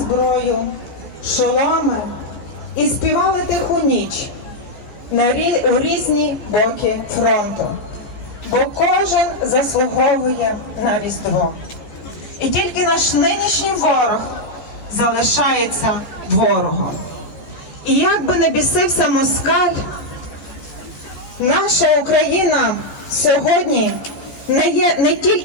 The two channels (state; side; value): late; right; 14 ms